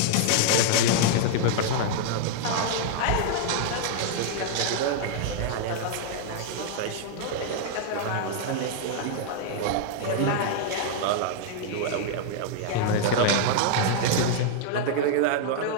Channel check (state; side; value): different; both; correlation -0.01